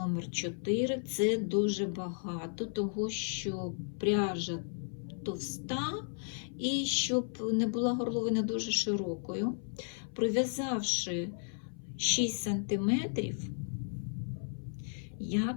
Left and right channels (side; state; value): right; silent; 55 dB below the other